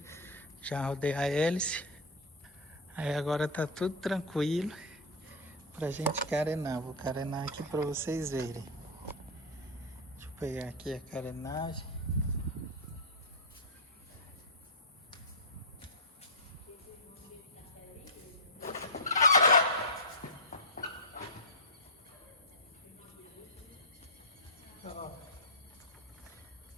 Já rodei a hélice. Aí agora tá tudo tranquilo pra gente carenar. Vou carenar aqui pra vocês verem. Deixa eu pegar aqui a carenagem. Ó,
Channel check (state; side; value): normal; both; correlation -0.03